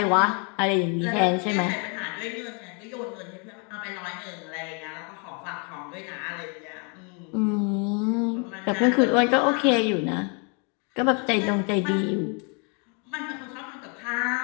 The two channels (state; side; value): quieter; right; 35.9 dB